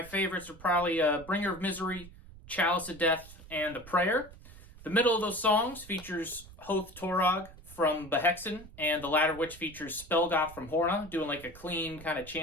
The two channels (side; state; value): right; noise; rumble, 18 dB below the sound